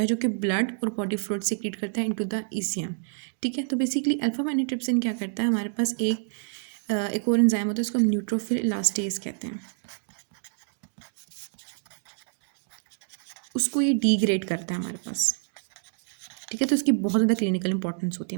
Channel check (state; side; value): silent; left; digital silence